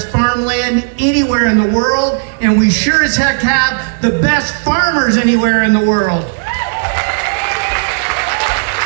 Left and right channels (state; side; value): silent; left; digital silence